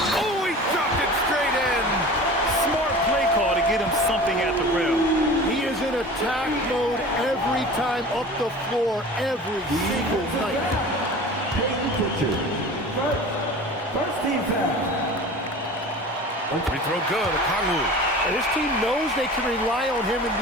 Oh, he dropped it straight in. Smart play call to get him something at the rim. He is in attack mode every time up the floor, every single night. First team foul. Free throw good, Okongwu. And his team knows they can rely on him in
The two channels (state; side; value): normal; both; correlation 0.38